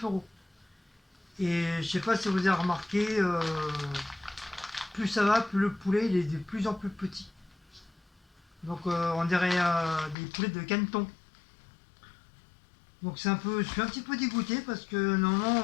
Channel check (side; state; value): right; drops out; at 10.2 s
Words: euros. Et je sais pas si vous avez remarqué, plus ça va, plus le poulet il est de plus en plus petit. Donc on dirait des poulets de caneton. Donc je suis un petit peu dégoûté parce que